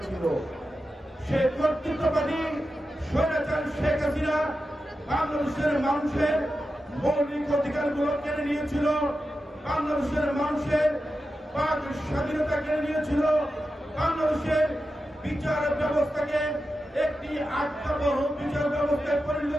সেই কর্তৃত্ববাদী স্বৈরাচারী শেখ হাসিনা বাংলাদেশের মানুষের মৌলিক অধিকারগুলো কেড়ে নিয়েছিল, বাংলাদেশের মানুষের বাক স্বাধীনতা কেড়ে নিয়েছিল, বাংলাদেশের বিচার ব্যবস্থাকে একটি আত্মবহ বিচার ব্যবস্থায় পরিণত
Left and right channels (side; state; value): both; normal; correlation 0.91